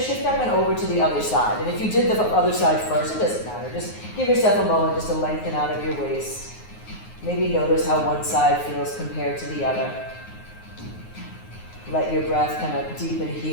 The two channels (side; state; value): right; late; 9.5 ms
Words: shift up and over to the other side. And if you did the other side first, it doesn't matter. Just give yourself a moment just to lengthen out of your waist. Maybe notice how one side feels compared to the other. Let your breath kind of deepen